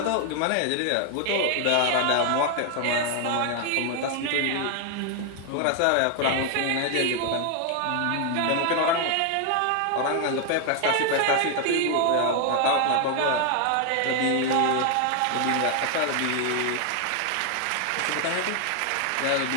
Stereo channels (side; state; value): both; different; correlation 0.00